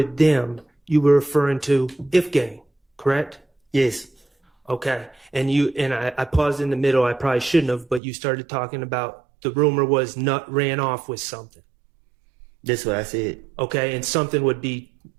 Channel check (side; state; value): left; drops out; at 8.0 s